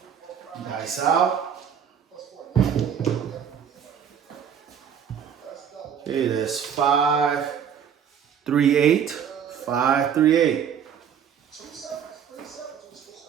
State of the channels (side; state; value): left; quieter; 8.1 dB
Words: Dice out. Okay, that's 5, 3, 8. 5, 3, 8. It's